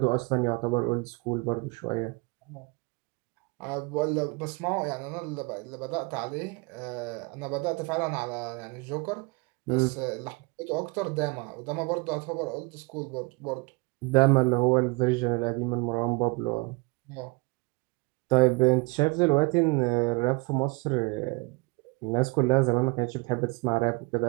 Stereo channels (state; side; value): quieter; left; 27.8 dB